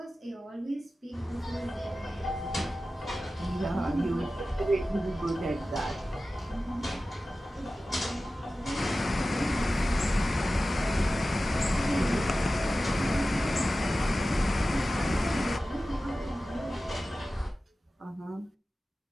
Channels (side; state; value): both; normal; correlation 0.95